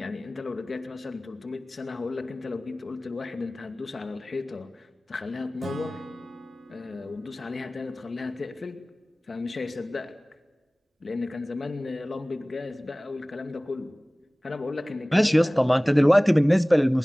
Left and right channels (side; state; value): both; normal; correlation 0.98